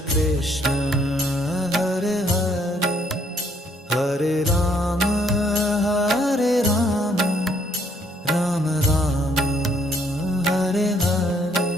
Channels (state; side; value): normal; both; correlation 0.67